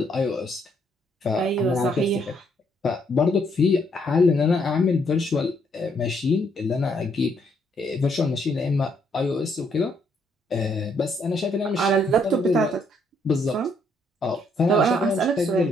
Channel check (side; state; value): both; normal; correlation 0.71